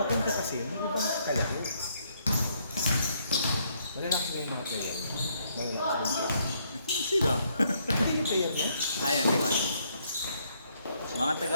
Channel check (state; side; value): inverted; both; correlation -0.71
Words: kasi, hindi ba kalaro? Malalaki na yung mga player. Malalaki Sila. Hindi yung player niya? Ayun, hindi ko alam. Mga